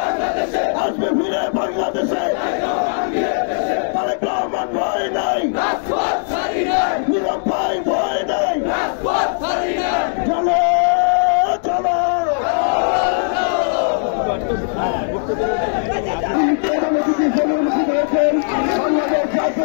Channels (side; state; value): right; silent; digital silence